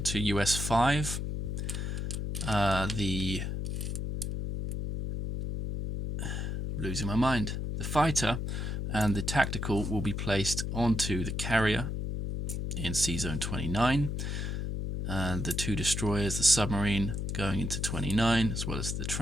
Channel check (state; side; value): noise; left; hum, 2 dB below the sound